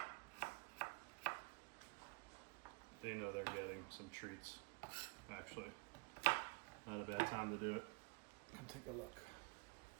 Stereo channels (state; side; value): quieter; left; 30.3 dB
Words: They know they're getting some treats. Actually, not a bad time to do it. Come take a look.